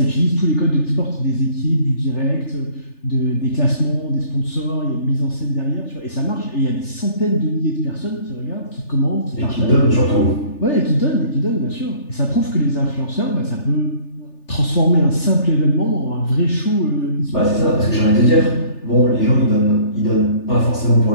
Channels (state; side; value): late; right; 3.4 ms